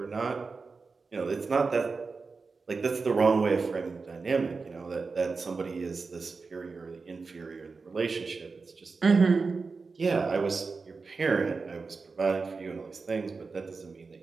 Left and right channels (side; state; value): left; quieter; 4.4 dB